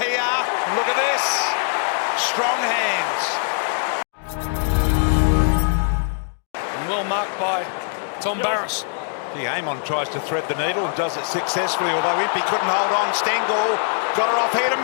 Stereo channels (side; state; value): right; silent; digital silence